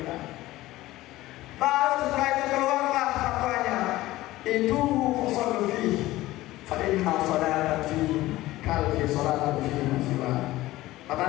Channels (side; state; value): right; quieter; 17.1 dB